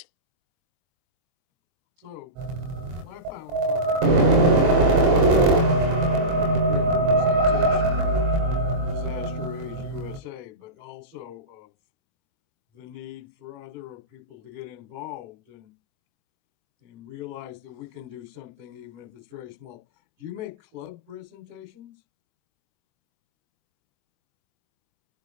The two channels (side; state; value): left; late; 23 ms